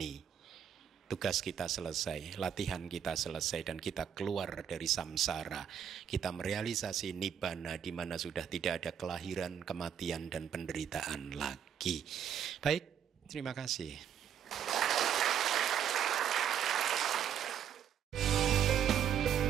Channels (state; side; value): quieter; left; 8.8 dB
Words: Tugas kita selesai, latihan kita selesai, dan kita keluar dari samsara. Kita merealisasi nibbana, di mana sudah tidak ada kelahiran, kematian, dan penderitaan lagi. Baik, terima kasih.